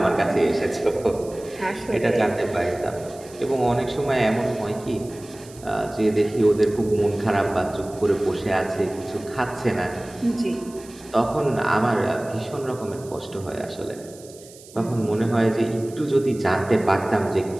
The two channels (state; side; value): noise; right; hiss, 21 dB below the sound